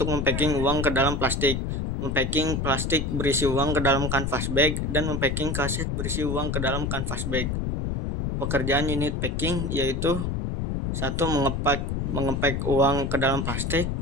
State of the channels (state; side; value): noise; left; rumble, 1 dB below the sound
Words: mempacking uang ke dalam plastik, mempacking plastik berisi uang ke dalam canvas bag, dan mempacking kaset berisi uang ke dalam canvas bag. Pekerjaan unit packing yaitu 1. Mengepak uang ke dalam plastik.